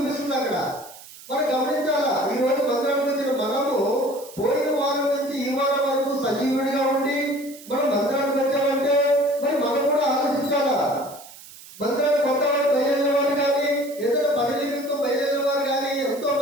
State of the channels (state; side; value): noise; right; hiss, 18 dB below the sound